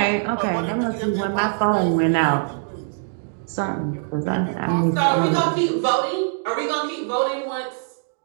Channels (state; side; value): silent; left; digital silence